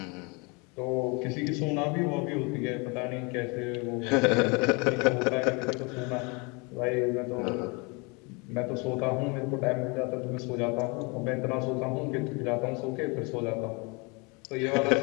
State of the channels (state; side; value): quieter; right; 29.8 dB